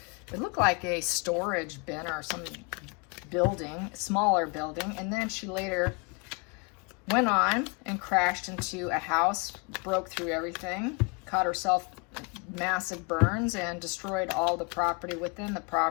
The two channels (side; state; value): right; quieter; 31.6 dB